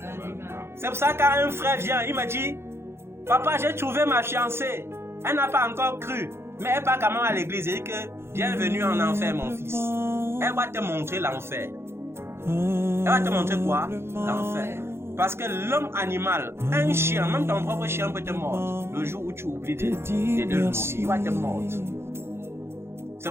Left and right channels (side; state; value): left; late; 0.12 ms